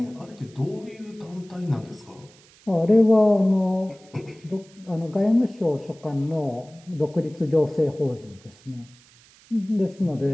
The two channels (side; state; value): right; noise; hiss, 27 dB below the sound